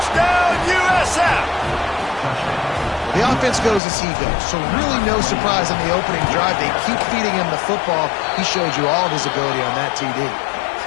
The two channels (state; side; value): drops out; right; at 3.8 s